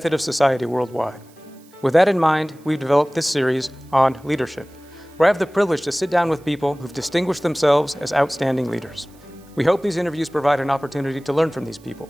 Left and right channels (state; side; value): noise; right; hiss, 29 dB below the sound